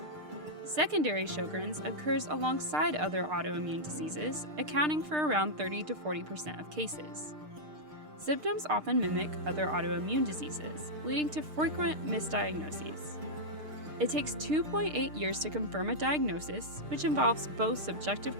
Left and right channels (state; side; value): late; left; 6.6 ms